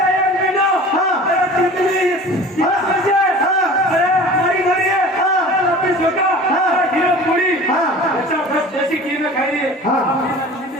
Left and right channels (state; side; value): normal; both; correlation 0.41